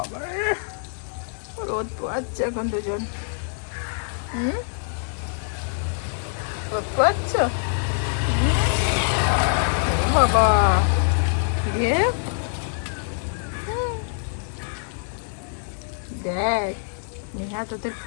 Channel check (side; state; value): right; silent; digital silence